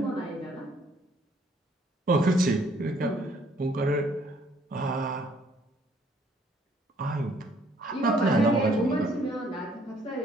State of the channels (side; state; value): both; normal; correlation 0.64